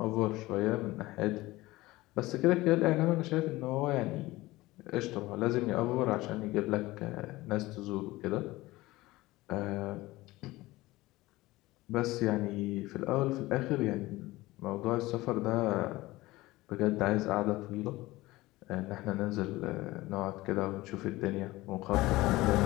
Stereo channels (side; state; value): right; quieter; 19.1 dB